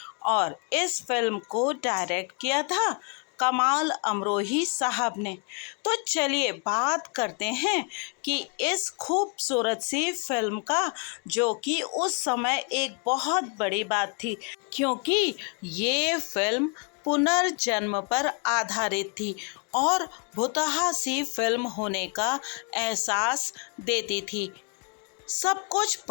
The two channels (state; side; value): quieter; right; 37.7 dB